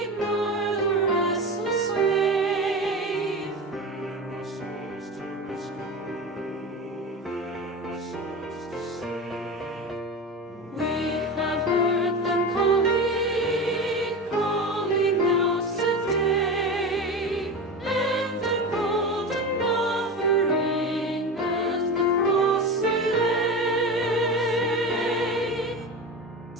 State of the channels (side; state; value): both; normal; correlation 0.26